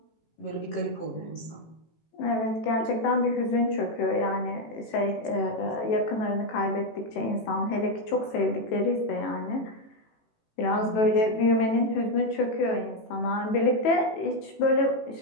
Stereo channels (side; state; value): right; late; 18 ms